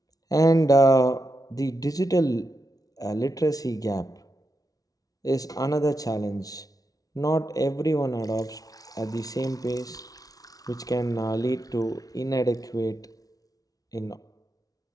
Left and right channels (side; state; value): right; late; 0.18 ms